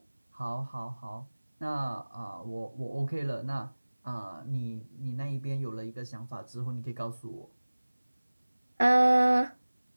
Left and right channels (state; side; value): inverted; both; correlation -1.00